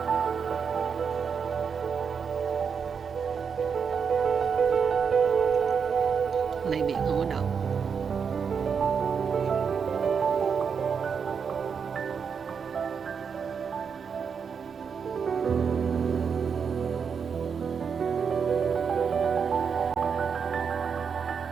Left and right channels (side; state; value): left; quieter; 6.4 dB